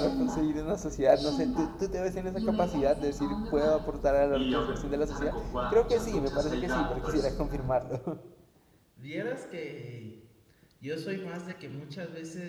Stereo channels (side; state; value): both; identical; correlation 1.00